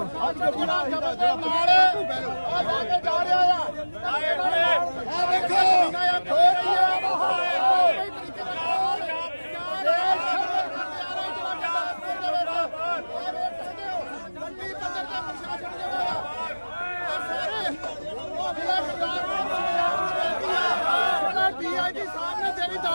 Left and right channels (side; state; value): both; inverted; correlation -1.00